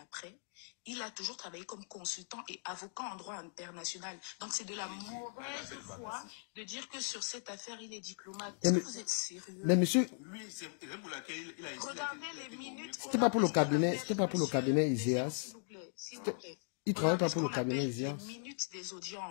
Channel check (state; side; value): silent; right; 52 dB below the other